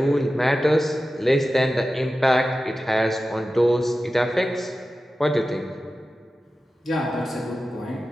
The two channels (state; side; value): normal; both; correlation 0.94